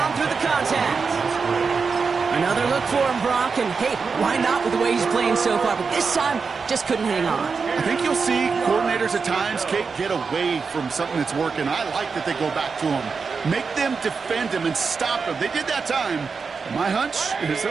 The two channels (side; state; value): left; quieter; 5.1 dB